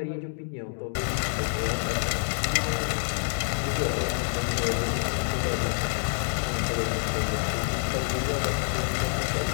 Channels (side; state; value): right; silent; digital silence